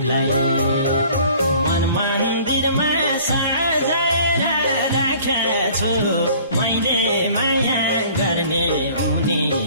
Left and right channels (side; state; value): both; inverted; correlation -0.51